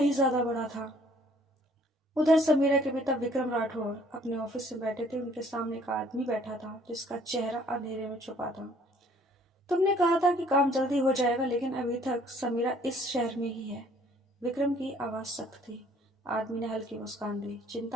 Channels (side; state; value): both; normal; correlation 0.59